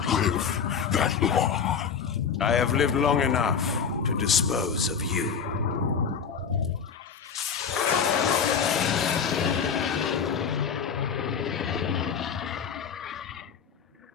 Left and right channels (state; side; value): quieter; right; 6.7 dB